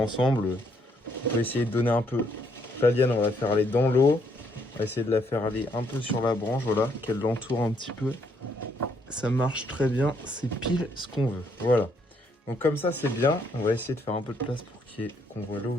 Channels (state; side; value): normal; both; correlation 0.71